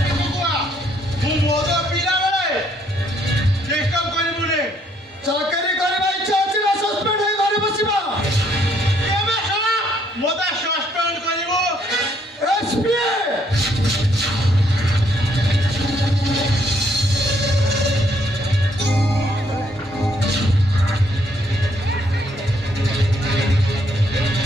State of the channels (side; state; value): both; normal; correlation 0.69